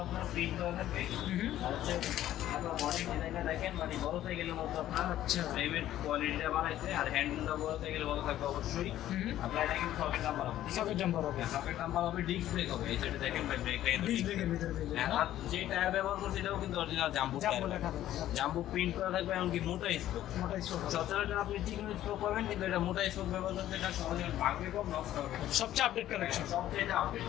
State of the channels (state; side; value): quieter; right; 13.0 dB